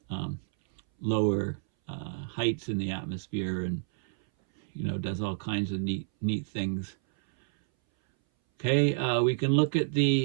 heights in the atmosphere, and does all kinds of neat things. Okay, we can look at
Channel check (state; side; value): silent; left; 59 dB below the other